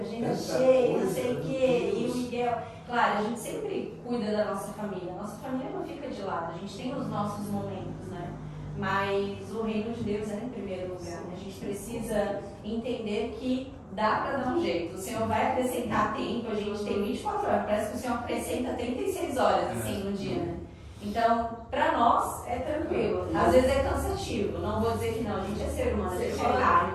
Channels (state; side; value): identical; both; correlation 1.00